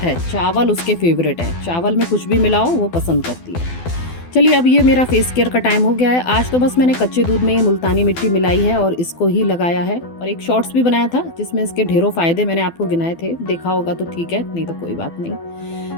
चावल उसके फेवरेट हैं, चावल में कुछ भी मिलाओ वो पसंद करती है। चलिए, अब ये मेरा फेस केयर का टाइम हो गया है। आज तो बस मैंने कच्चे दूध में ये मुल्तानी मिट्टी मिलाई है और इसको ही लगाया है, और एक शॉर्ट्स भी बनाया था जिसमें इसके ढेरों फ़ायदे मैंने आपको गिनाए थे, देखा होगा तो ठीक है, नहीं तो कोई बात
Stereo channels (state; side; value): late; right; 12 ms